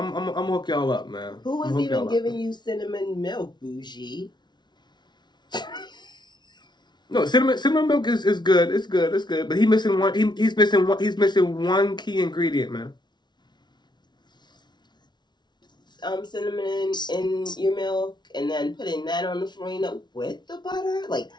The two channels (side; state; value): right; late; 0.21 ms